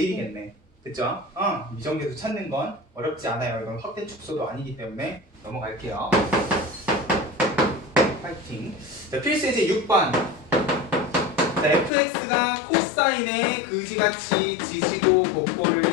됐죠? 미정계수 찾는 건 어렵지 않아요. 이건 확대 축소도 아니기 때문에 넘어갈게요. 파이팅. 자, 필수 예제 6번. 자, fx가 코사인에 그지같이 지지고 곱고를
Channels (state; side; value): drops out; right; at 11.9 s